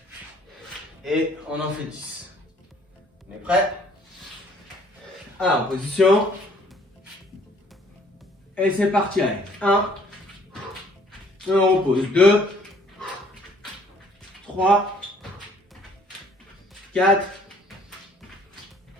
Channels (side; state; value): both; normal; correlation 0.60